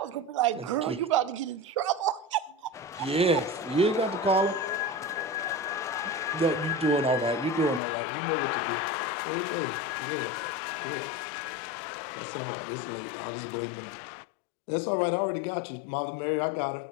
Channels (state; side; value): drops out; right; at 7.8 s